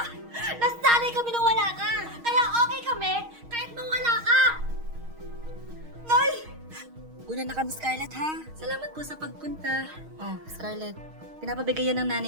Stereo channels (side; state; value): left; late; 6.4 ms